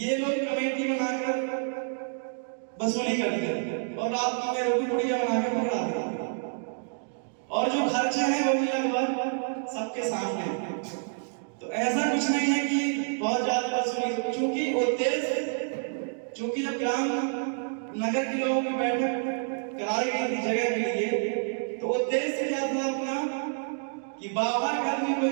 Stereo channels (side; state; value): left; silent; digital silence